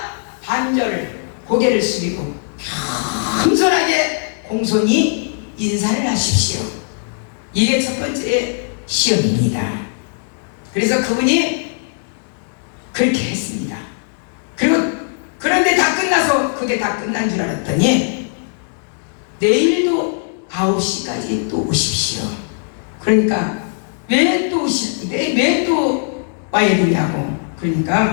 반절을 고개를 숙이고 겸손하게 공손히 인사를 하십시오. 이게 첫 번째 시험입니다. 그래서 그분이 그렇게 했습니다. 그런데 다 끝나서 그게 다 끝난 줄 알았더니 내일도 9시까지 또 오십시오. 그러니까 왜 또 오시는데 왜 또 와야 되냐고.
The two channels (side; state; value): right; silent; digital silence